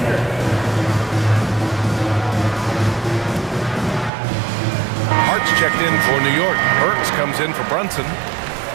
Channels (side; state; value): left; drops out; at 4.1 s